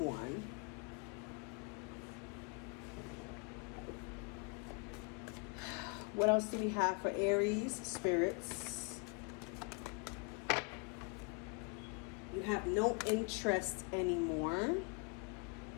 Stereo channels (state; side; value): quieter; right; 33.3 dB